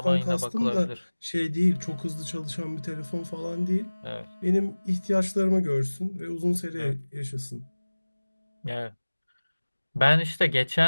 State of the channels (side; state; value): both; inverted; correlation -1.00